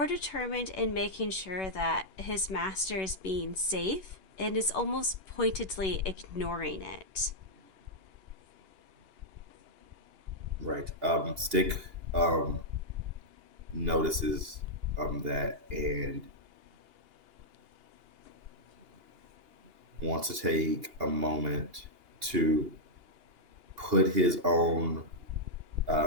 determined in making sure that his master is being safe and is almost pointedly ignoring it. Right. Stick notices that and wants to take a moment to put his own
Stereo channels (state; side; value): late; left; 2.8 ms